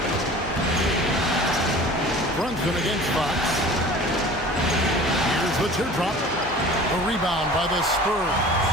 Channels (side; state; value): right; noise; hum, 17 dB below the sound